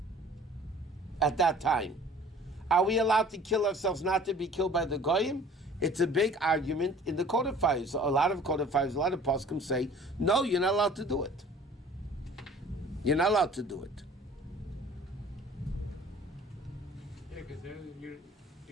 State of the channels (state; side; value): normal; both; correlation 0.49